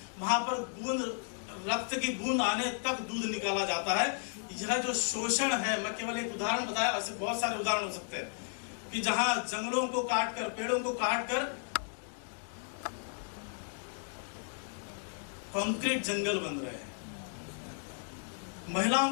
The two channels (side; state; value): right; silent; 55 dB below the other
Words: वहां पर बूंद रक्त की बूंद आने तक दूध निकाला जाता है। यह जो शोषण है, मैं केवल एक उदाहरण बताया, ऐसे बहुत सारे उदाहरण हो सकते हैं कि जहां जंगलों को काटकर, पेड़ों को काटकर कंक्रीट जंगल बन रहे हैं।